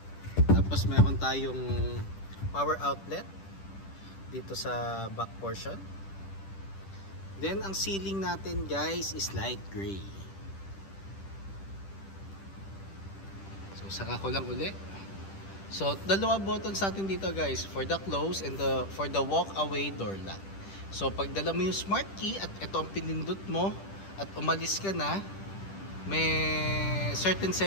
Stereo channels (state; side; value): late; right; 10 ms